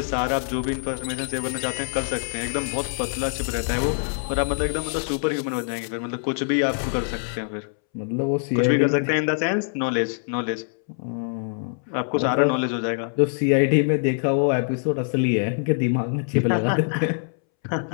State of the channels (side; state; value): right; silent; 62 dB below the other